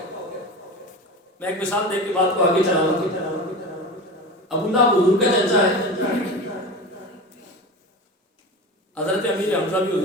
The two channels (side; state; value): both; normal; correlation 0.29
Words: میں ایک مثال دے کے بات کو آگے چلاؤں گا۔ ابو لہب حضور کا چچا ہے، حضرت امیر حمزہ بھی